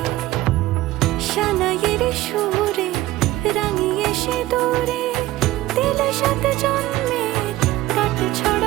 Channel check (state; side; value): quieter; left; 16.6 dB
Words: সানাইয়ের সুরে রাঙিয়ে সিঁদুরে দিলে সাথে জন্মের কাট